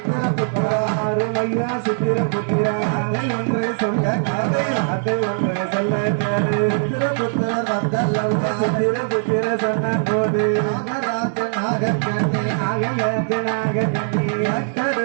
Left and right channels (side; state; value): left; silent; digital silence